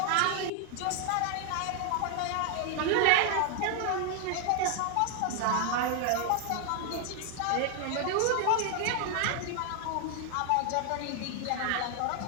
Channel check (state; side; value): different; both; correlation 0.00